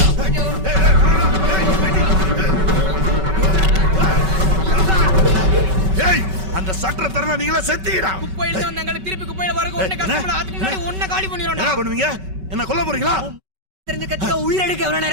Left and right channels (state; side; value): late; left; 5.3 ms